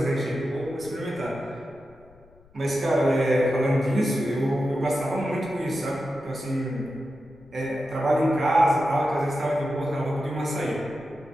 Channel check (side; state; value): left; noise; rumble, 28 dB below the sound